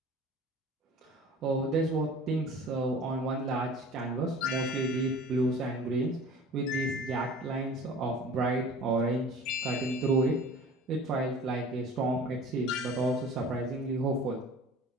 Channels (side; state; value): both; normal; correlation 0.43